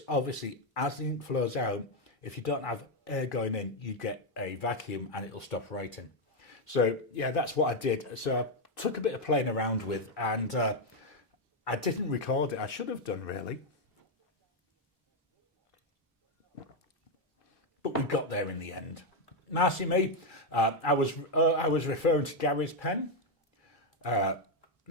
obviously as the ink flows out, if you don't have air going in, you get a vacuum and it'll stop writing. So yeah, that's what I did. So I took a bit of playing around with, and I didn't record it. I should have done, really. But we got there in the end. Marcy Me, I was referring to Gary's pen.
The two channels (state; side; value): normal; both; correlation 0.03